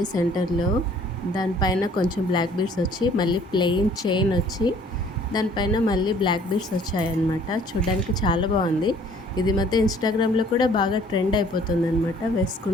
సెంటర్లో, దానిపైన కొంచెం బ్లాక్ బీడ్స్ వచ్చి మళ్ళీ ప్లెయిన్ చైన్ వచ్చి దానిపైన మళ్ళీ బ్లాక్ బీడ్స్ వచ్చాయన్నమాట. చూడడానికి చాలా బాగుంది. ఇది మధ్య ఇన్స్టాగ్రామ్లో కూడా బాగా ట్రెండ్ అయిపోతుంది అనమాట.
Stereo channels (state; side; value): normal; both; correlation 0.56